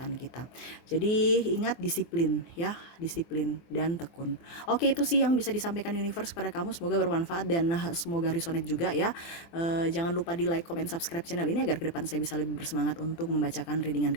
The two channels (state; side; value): late; right; 24 ms